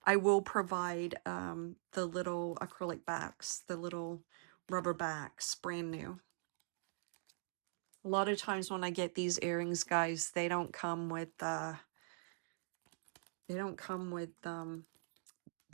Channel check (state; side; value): silent; left; digital silence